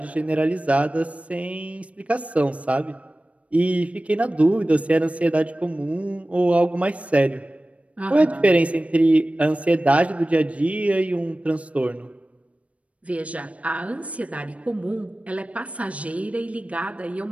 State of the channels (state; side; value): late; left; 0.064 ms